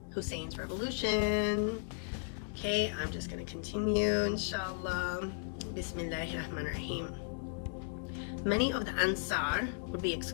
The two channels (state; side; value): silent; right; digital silence